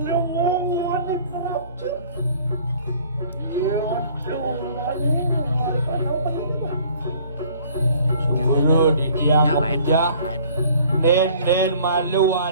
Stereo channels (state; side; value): inverted; both; correlation -0.53